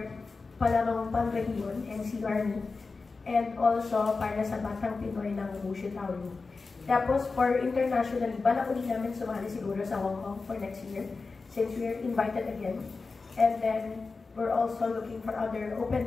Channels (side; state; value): right; quieter; 4.1 dB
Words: palarong Panrehiyon and Sea Army. And also para sa Batang Pinoy ng Wushu Tauri. Tapos for internationally, balak ulit namin sumali siguro sa Hong Kong for next year since we are invited again. And then we're also looking for other